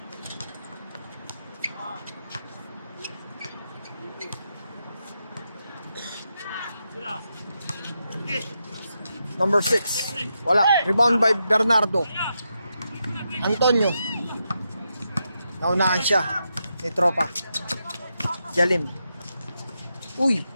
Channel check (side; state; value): both; inverted; correlation -0.85